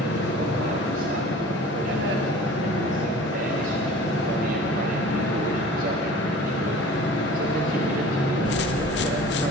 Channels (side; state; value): both; normal; correlation 0.43